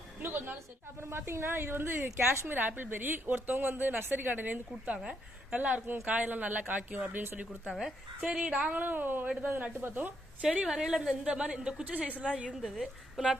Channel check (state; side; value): normal; both; correlation 0.76